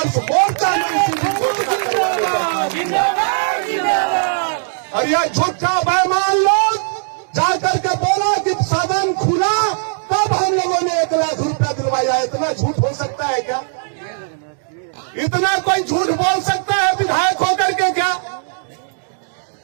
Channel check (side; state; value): left; silent; digital silence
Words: मोर्चा ने और यह झूठा बेईमान लोग जाकर के बोला कि सदन खुला तब हम लोगों ने 1 लाख रुपया दिलवाया। इतना झूठ हो सकता है क्या? इतना कोई झूठ बोल सकता है विधायक होकर के क्या?